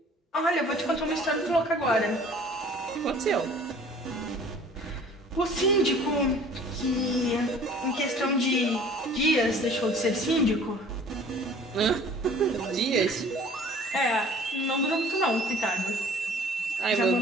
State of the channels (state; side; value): normal; both; correlation 0.50